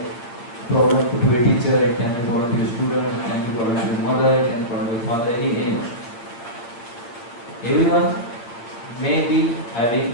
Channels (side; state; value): right; late; 8.6 ms